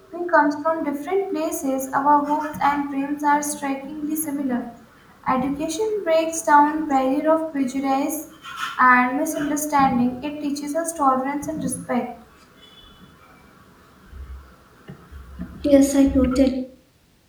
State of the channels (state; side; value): identical; both; correlation 1.00